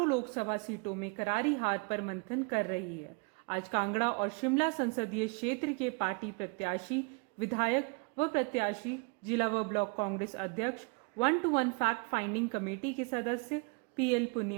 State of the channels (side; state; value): left; quieter; 32.5 dB